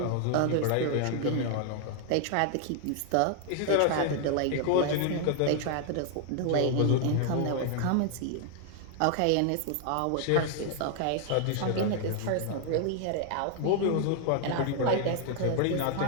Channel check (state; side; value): different; both; correlation 0.00